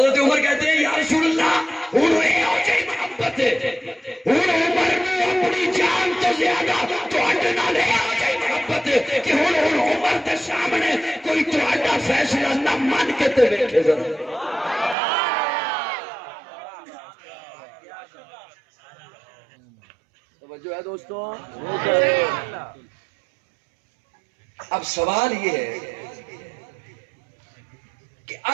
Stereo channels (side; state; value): left; drops out; at 15.0 s